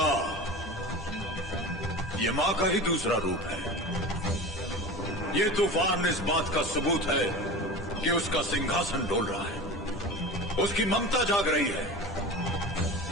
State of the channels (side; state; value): left; noise; hum, 23 dB below the sound